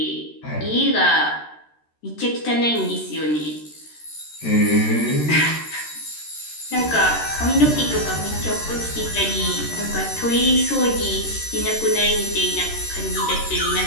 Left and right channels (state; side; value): late; right; 13 ms